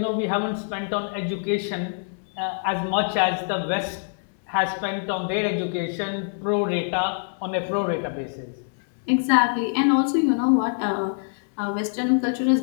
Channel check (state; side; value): silent; right; digital silence